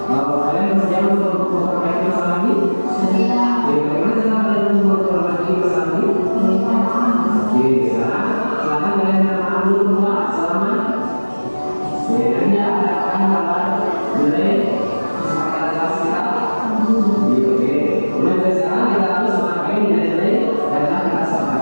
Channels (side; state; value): both; inverted; correlation -1.00